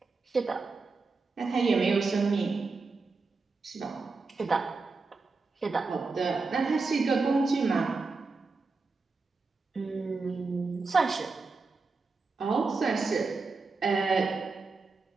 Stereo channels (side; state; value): left; quieter; 4.1 dB